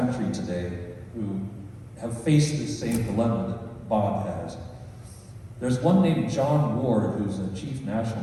country today who have faced the same dilemma that Bob has. There's one named John Ward, who's a chief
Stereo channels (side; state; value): both; identical; correlation 1.00